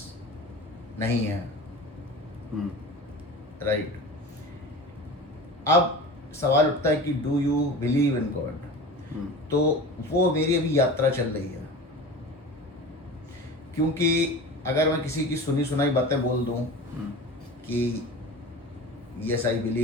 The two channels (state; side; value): normal; both; correlation 0.34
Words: नहीं है. राइट. अब सवाल उठता है कि do you believe in God. तो वो मेरी अभी यात्रा चल रही है, क्योंकि अगर मैं किसी की सुनी सुनाई बातें बोल दूं कि yes I